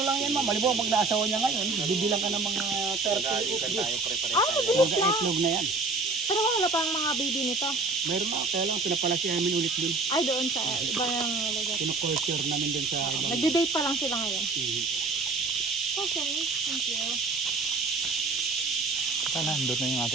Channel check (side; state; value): left; quieter; 3.7 dB